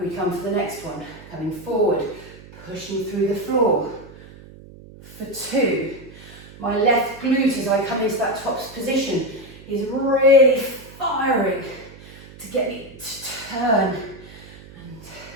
come for the next one, coming forward, pushing through the floor, for 2. My left glute as I come into that tops position is really firing to get me to turn. And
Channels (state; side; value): noise; right; hum, 19 dB below the sound